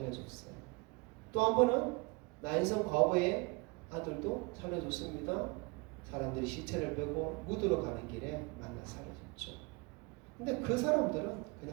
또 한 번은 나인성 과부의 아들도 살려줬습니다. 사람들이 시체를 빼고 묻으러 가는 길에 만나 살려줬죠. 근데 그 사람들은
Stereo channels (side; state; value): left; quieter; 28.3 dB